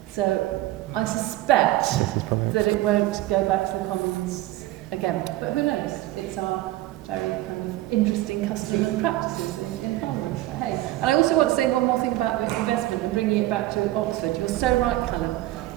So I suspect that it won't go back to the Commons again. But who knows? It's our very kind of interesting custom and practices in Parliament. But hey. And I also want to say one more thing about this investment and bringing it back to Oxford. You're so right, Callum,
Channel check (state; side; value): quieter; left; 16.3 dB